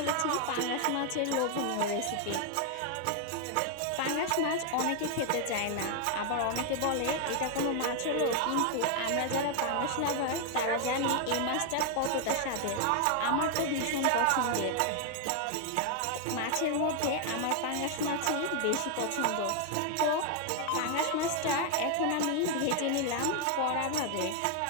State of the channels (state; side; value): different; both; correlation 0.00